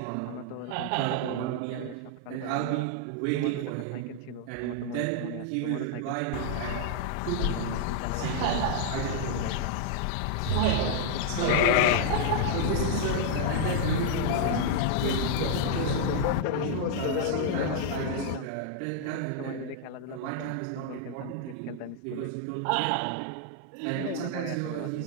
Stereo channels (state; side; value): different; both; correlation -0.01